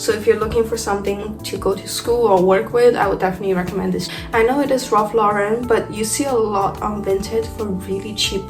if you're looking for something to go to school or work with, I would definitely recommend this. I know it is Ralph Lauren, but you see a lot on Vinted for really cheap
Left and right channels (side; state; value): both; identical; correlation 1.00